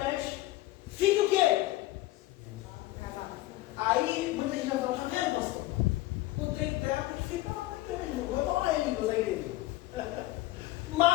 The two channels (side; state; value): right; quieter; 17.5 dB